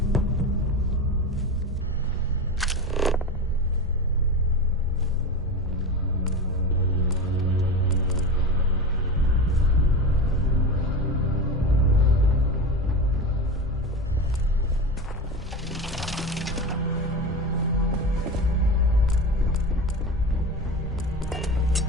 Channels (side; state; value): both; normal; correlation 0.25